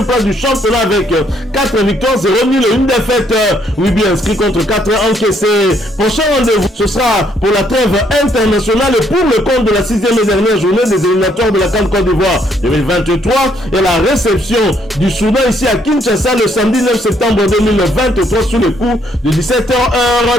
place du championnat avec 4 victoires, 0 nul et 1 défaite. 8 buts inscrits contre 4 encaissés. Prochain rendez-vous, ce sera pour la trêve internationale et pour le compte de la 6e et dernière journée des éliminatoires de la CAN Côte d'Ivoire 2023 et la réception du Soudan ici à Kinshasa le samedi 9 septembre 2023 sous le coup de 17h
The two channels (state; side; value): normal; both; correlation 0.70